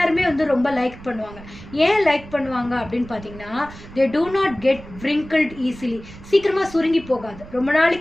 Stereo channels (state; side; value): noise; right; rumble, 17 dB below the sound